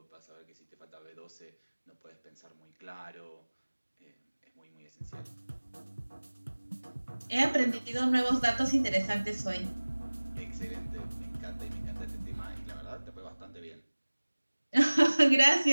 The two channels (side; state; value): both; inverted; correlation -1.00